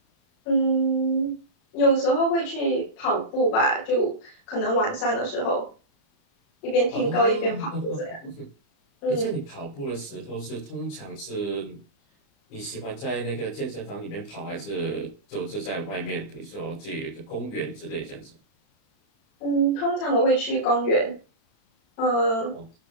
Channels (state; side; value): late; right; 35 ms